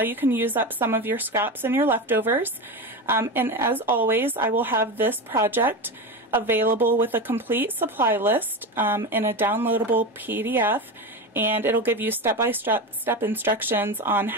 you can use up some of your scraps and your leftovers. And as always, I will have this project available with a complete supply list in a downloadable PDF, and it'll give you step-by-step instructions on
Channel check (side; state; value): both; normal; correlation 0.21